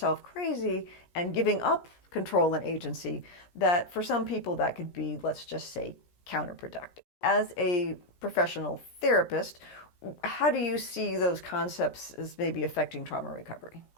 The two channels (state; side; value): late; right; 17 ms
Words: crazy and giving up control and agency, that for some people that could be, let's just say, counterproductive. As a professional therapist, how do you see those concepts as maybe affecting trauma recovery?